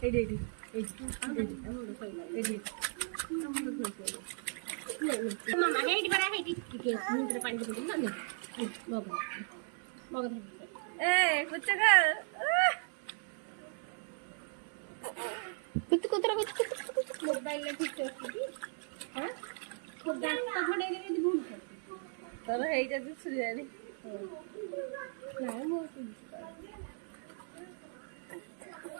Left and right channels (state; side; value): silent; left; 53 dB below the other